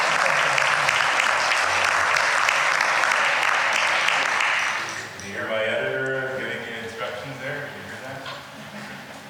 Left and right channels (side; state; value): both; identical; correlation 1.00